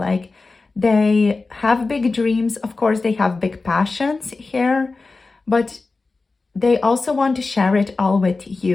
they have big dreams. Of course, they have big passions here, but they also want to share it all with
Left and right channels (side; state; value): right; quieter; 3.8 dB